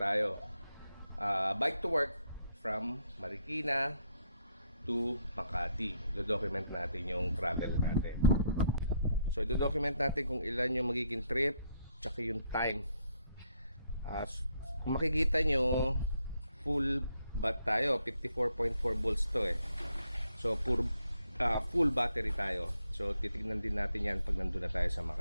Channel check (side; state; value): both; inverted; correlation -0.74